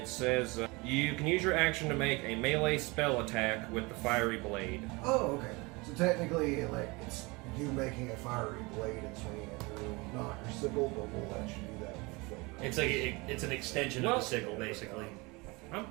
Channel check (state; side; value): quieter; left; 25.5 dB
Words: says you can use your action to make a melee spell attack with the fiery blade. Oh, okay. So technically, like, it's you making a fiery blade and swinging it through, not your sickle, but we'll let you do that with the flame. It's like it's an extension of the sickle, basically. I'm